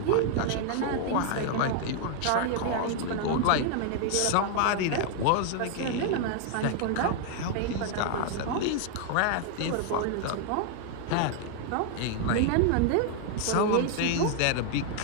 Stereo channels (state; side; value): different; both; correlation 0.00